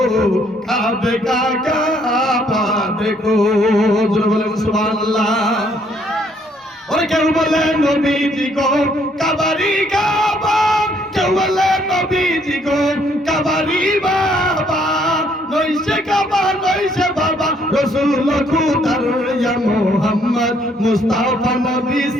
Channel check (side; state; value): both; normal; correlation 0.67